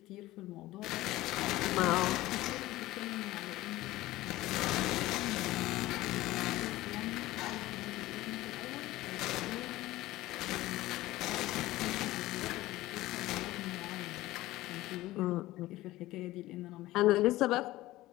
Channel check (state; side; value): quieter; right; 17.2 dB